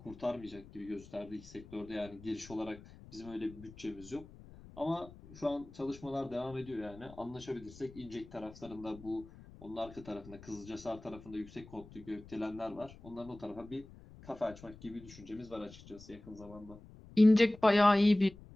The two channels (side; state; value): left; noise; rumble, 19 dB below the sound